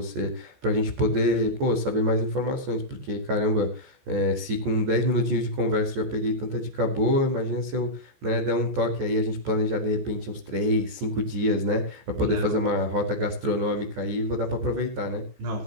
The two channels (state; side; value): late; left; 15 ms